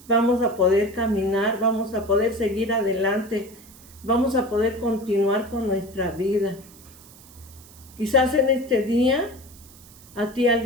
vamos a poder caminar, vamos a poder seguir adelante, vamos a poder continuar con nuestra vida. Quizás en este día a ti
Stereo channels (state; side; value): noise; right; hiss, 22 dB below the sound